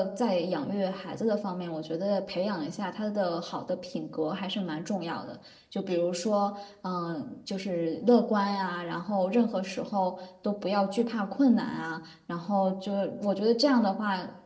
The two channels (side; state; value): both; identical; correlation 1.00